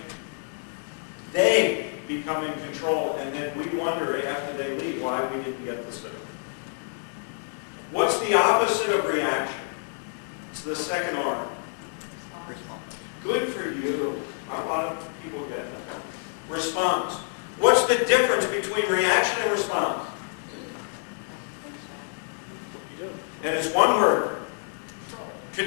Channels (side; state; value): right; silent; digital silence